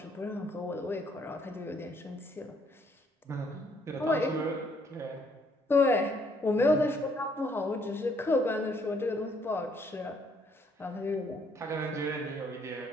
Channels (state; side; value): normal; both; correlation 0.68